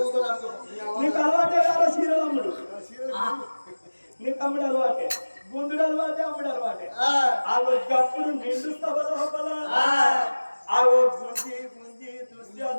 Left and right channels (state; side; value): inverted; both; correlation -1.00